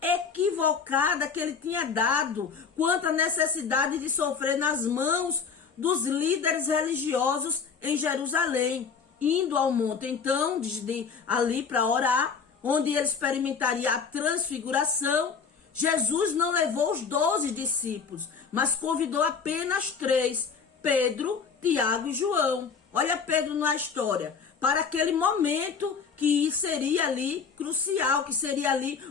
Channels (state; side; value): quieter; right; 5.9 dB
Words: equivocada que ele tinha dado quanto à necessidade de sofrer nas mãos dos líderes religiosos em Jerusalém, indo ao monte então ali para orar, onde ele experimentaria a transfiguração. Jesus não levou os 12 discípulos, mas convidou apenas 3, Pedro, Tiago e João. Olha Pedro na história, para aquele momento que seria ali crucial, que seria ali